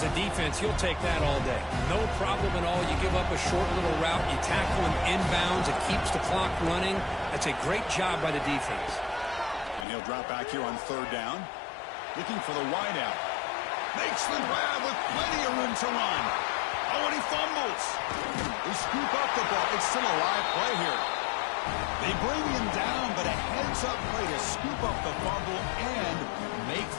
a defense, you'll take that all day. No problem at all. You give up a short little route. You tackle him inbounds. It keeps the clock running. That's a great job by the defense. And he'll drop back here on third down. Looking for the wideout. Makes the grab with plenty of room to run. Oh, and he fumbles. They scoop up the ball. It's still a live play here. They bring him down, but a heads-up play to scoop up the fumble and make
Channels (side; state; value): right; drops out; at 9.9 s